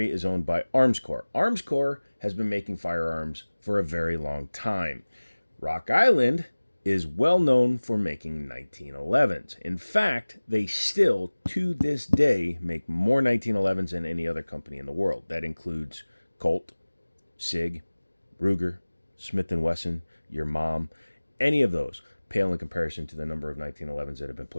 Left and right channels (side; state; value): both; inverted; correlation -1.00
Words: is owned by Armscor. Armscor has been making firearms for a very long time. Rock Island is well known for making 1911s. In fact, they still, to this day, make more 1911s than any other company in the world. That includes Colt, Sig, Ruger, Smith & Wesson, your mom, any of those pale in comparison to the number of 1911s that have been